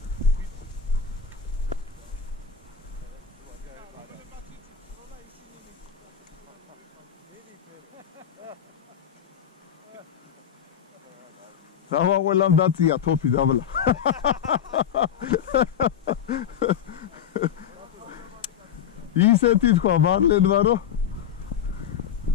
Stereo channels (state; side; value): quieter; right; 8.6 dB